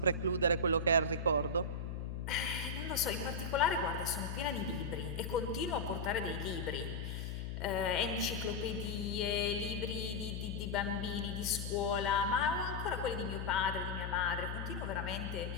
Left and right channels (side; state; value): left; noise; hum, 4 dB below the sound